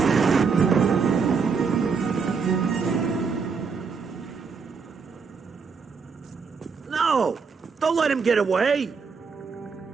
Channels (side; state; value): left; quieter; 5.4 dB